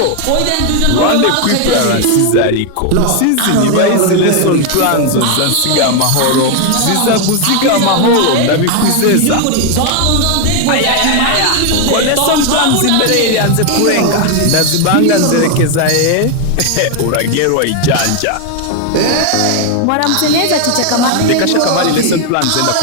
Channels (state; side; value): different; both; correlation 0.01